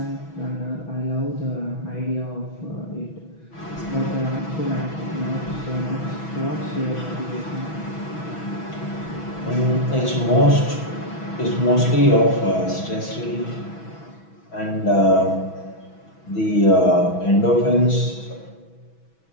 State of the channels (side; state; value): right; late; 6.1 ms